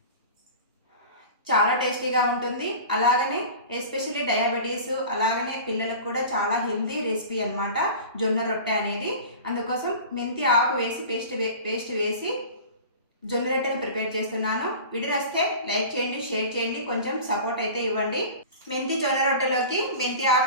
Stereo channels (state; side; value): inverted; both; correlation -0.37